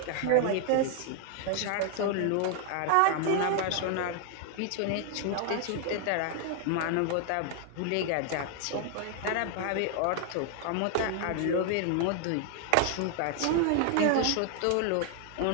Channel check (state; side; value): different; both; correlation 0.00